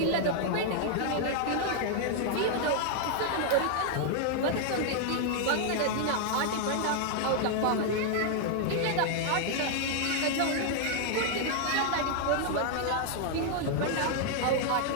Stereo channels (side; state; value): both; different; correlation 0.00